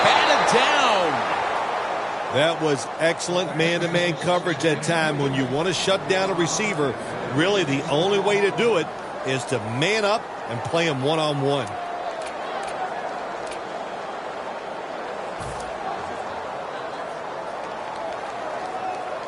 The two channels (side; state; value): both; identical; correlation 1.00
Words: down. That was excellent man-to-man coverage that time. When you want to shut down a receiver, really the only way to do it is to man up and play him one-on-one.